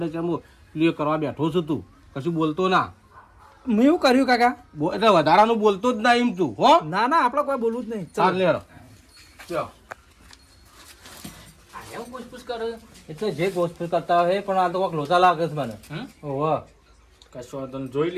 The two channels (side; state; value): both; identical; correlation 1.00